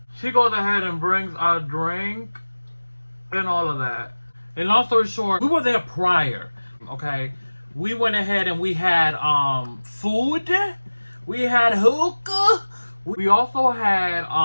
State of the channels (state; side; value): inverted; both; correlation -1.00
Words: She goes ahead and brings a drink and all of that. And long story short, we were there prior, okay? We went ahead and we had food. We had hookah. We also had,